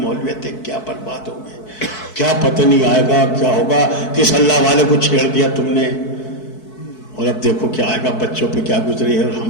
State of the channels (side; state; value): right; late; 4.6 ms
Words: ہے, کیا برباد ہو گئے, کیا پتہ نہیں آئے گا, کیا ہوگا, کس اللہ والے کو چھیڑ دیا تم نے, اور اب دیکھو کیا آئے گا, بچوں پہ کیا گزری ہے اور ہم